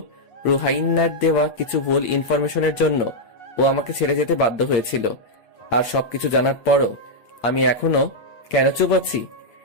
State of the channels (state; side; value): late; right; 8.7 ms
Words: রুহাইন্নার দেওয়া কিছু ভুল ইনফরমেশনের জন্য ও আমাকে ছেড়ে যেতে বাধ্য হয়েছিল। আর সবকিছু জানার পরও আমি এখনো কেন চুপ আছি,